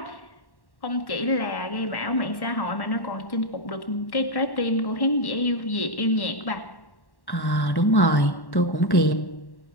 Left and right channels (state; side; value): late; right; 1.1 ms